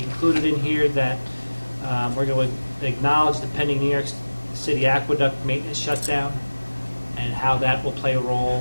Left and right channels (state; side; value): inverted; both; correlation -1.00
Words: included in here that we're going to acknowledge the pending New York City aqueduct maintenance shutdown and how that will play a